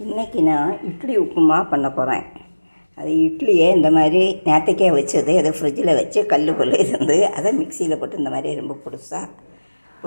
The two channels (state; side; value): inverted; both; correlation -1.00